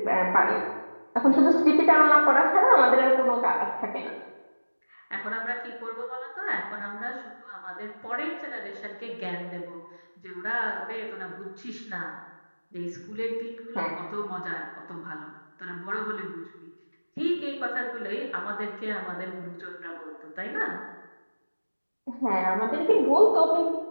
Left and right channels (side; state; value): both; inverted; correlation -1.00